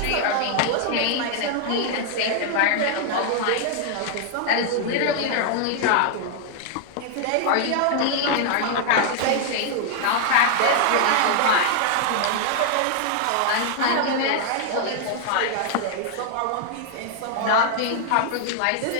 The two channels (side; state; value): both; different; correlation 0.00